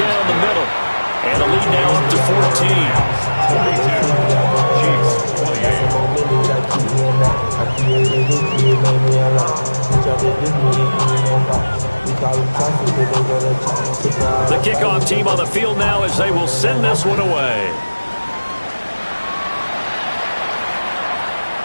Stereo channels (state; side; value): inverted; both; correlation -1.00